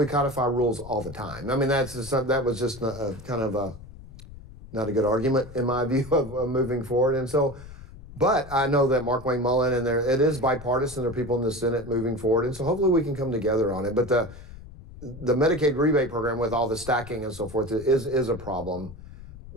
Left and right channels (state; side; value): noise; left; rumble, 16 dB below the sound